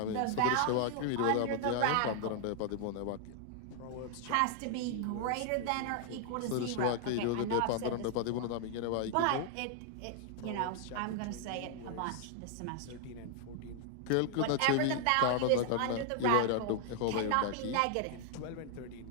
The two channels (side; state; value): both; different; correlation 0.00